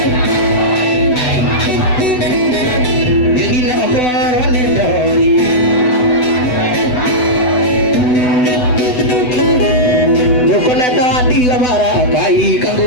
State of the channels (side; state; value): right; late; 8.0 ms